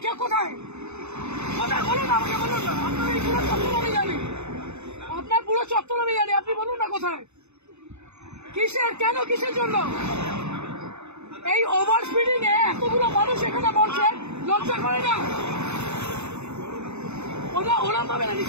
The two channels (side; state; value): left; late; 0.81 ms